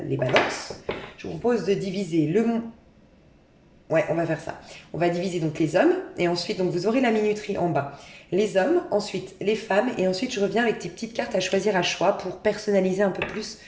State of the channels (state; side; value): identical; both; correlation 1.00